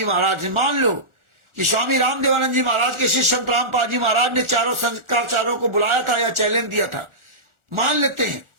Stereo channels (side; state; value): left; late; 1.4 ms